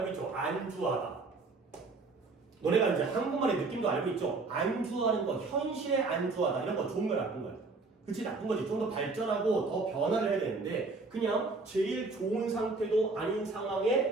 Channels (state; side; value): quieter; left; 3.8 dB